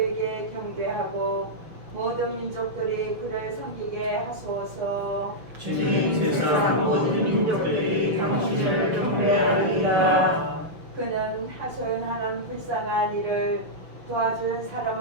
경배하고 모든 민족들이 그를 섬기게 하소서. 주님, 세상 모든 민족들이 당신을 경배하리이다. 그는 하소연하는 불쌍한 이를 도와줄 사람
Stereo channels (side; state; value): left; late; 6.3 ms